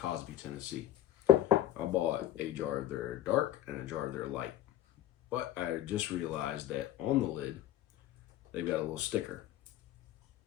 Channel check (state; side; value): quieter; right; 12.2 dB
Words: Tennessee. I bought a jar of their dark and a jar of their light. But I just realized that on the lid, they've got a little sticker.